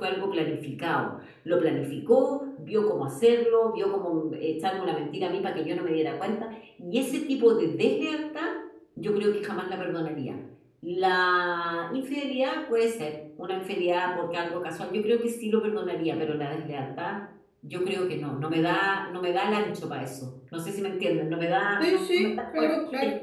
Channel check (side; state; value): both; identical; correlation 1.00